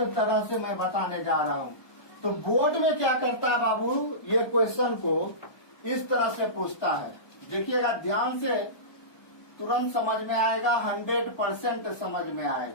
से मैं बताने जा रहा हूँ। तो बोर्ड में क्या करता है बाबू, ये क्वेश्चन को इस तरह से पूछता है, देखिएगा ध्यान से, तुरंत समझ में आएगा, 100% समझ में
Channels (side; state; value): right; late; 1.2 ms